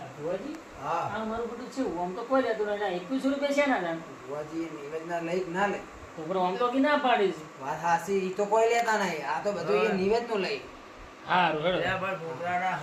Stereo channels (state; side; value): identical; both; correlation 1.00